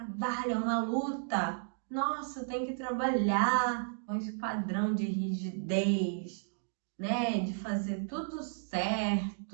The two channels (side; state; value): left; silent; digital silence